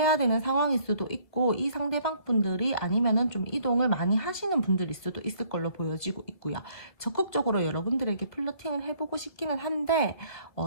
되는 상황일 수도 있고, 이 상대방 분들이 아니면은 좀 이동을 많이 하시는 분들일 수도 있을 걸로 보여지고 있고요. 적극적으로 여러분들에게 플러팅을 해보고 싶기는 한데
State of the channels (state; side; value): late; right; 2.4 ms